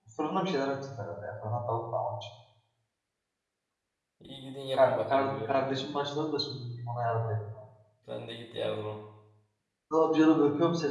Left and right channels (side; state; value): both; identical; correlation 1.00